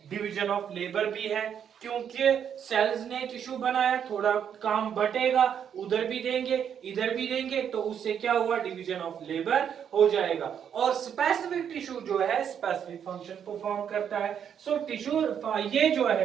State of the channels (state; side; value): quieter; left; 8.4 dB